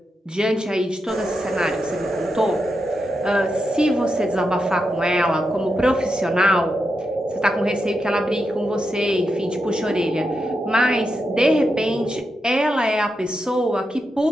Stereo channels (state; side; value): normal; both; correlation 0.86